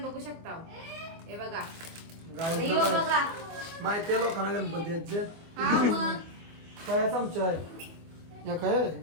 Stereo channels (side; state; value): left; late; 24 ms